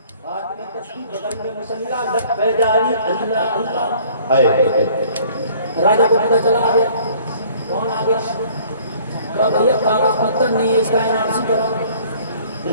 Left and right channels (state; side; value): inverted; both; correlation -0.55